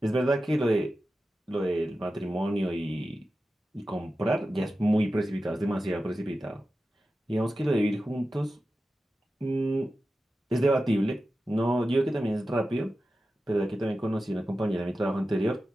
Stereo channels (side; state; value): both; normal; correlation 0.93